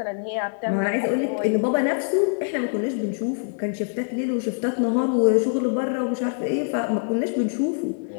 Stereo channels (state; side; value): silent; right; digital silence